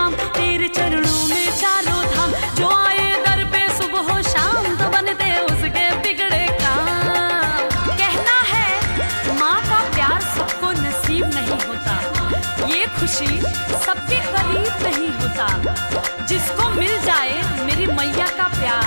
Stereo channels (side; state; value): both; inverted; correlation -1.00